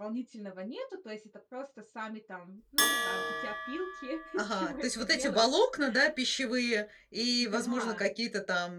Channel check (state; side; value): identical; both; correlation 1.00